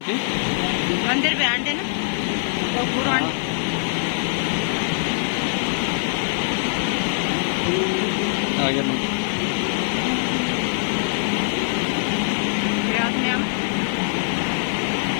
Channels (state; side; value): silent; right; digital silence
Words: मंदिर पे आंटे ना तो पूरा आ गया मंदिर रात में हम